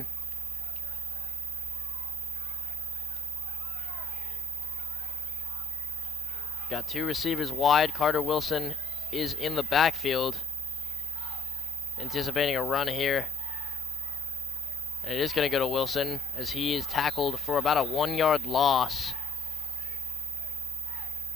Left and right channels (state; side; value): normal; both; correlation 0.69